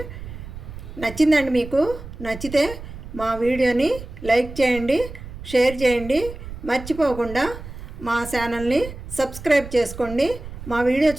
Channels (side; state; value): right; noise; rumble, 12 dB below the sound